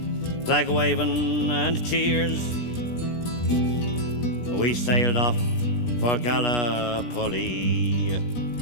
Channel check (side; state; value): right; late; 17 ms